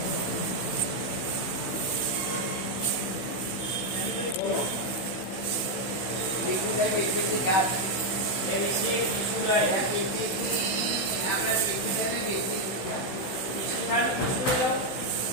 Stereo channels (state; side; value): late; right; 16 ms